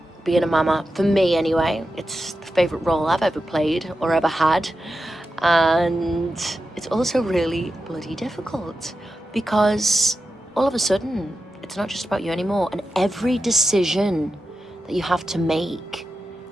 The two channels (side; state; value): both; normal; correlation 0.90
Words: being a mama, for me anyway. It's the favorite role I've ever played or ever had. And it's also really bloody difficult, because all of a sudden, it's not just about you anymore. And every decision that you have to make,